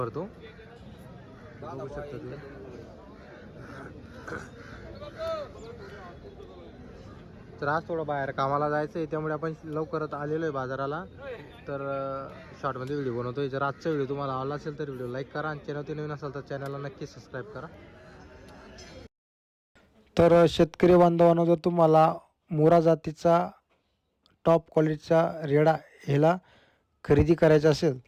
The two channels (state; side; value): identical; both; correlation 1.00